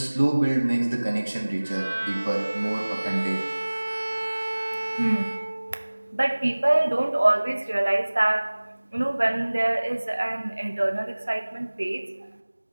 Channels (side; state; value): both; inverted; correlation -1.00